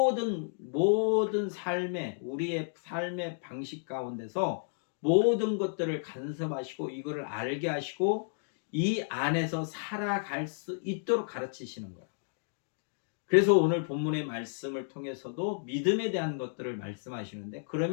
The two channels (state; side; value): silent; right; digital silence